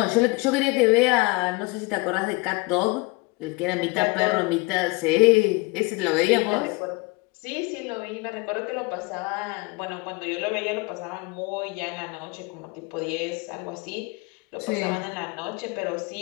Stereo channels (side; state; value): right; quieter; 25.7 dB